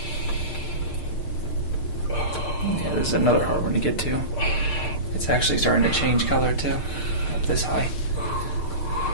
this is another hard one to get to. It's actually starting to change color too, up this high.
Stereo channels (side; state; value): right; late; 6.6 ms